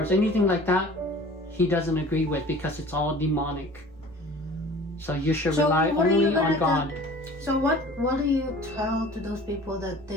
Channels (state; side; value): normal; both; correlation 0.45